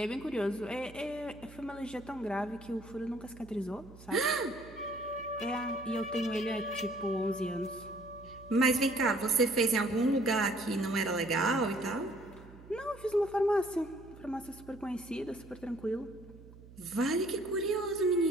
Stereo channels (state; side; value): noise; right; hum, 19 dB below the sound